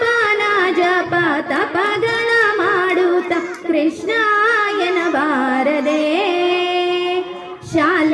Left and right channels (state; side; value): identical; both; correlation 1.00